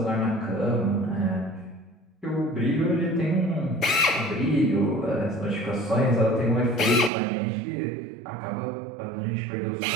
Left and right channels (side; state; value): left; drops out; at 7.1 s